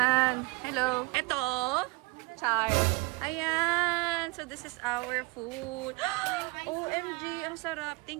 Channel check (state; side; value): quieter; left; 25.7 dB